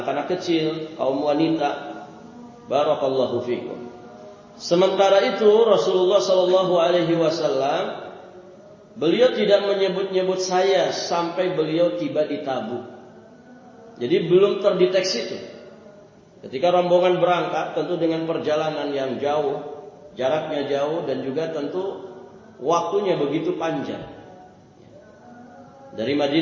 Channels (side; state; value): both; identical; correlation 1.00